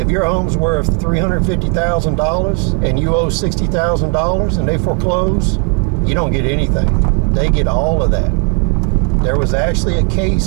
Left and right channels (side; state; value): left; quieter; 34.0 dB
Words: your home's worth $350,000 and you owe $60,000 and they foreclose, you don't get anything. They get all of that. There was actually a